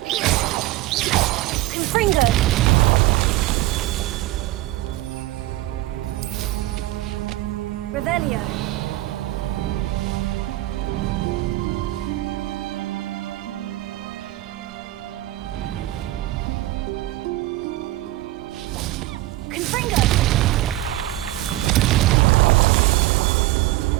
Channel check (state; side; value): quieter; left; 17.1 dB